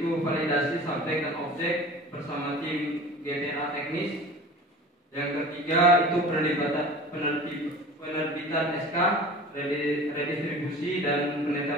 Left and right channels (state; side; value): normal; both; correlation 0.39